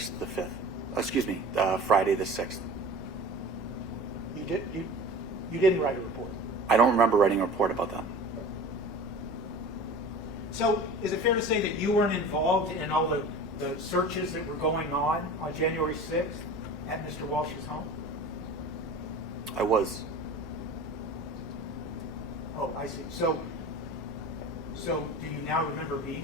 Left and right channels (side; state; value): both; normal; correlation 0.37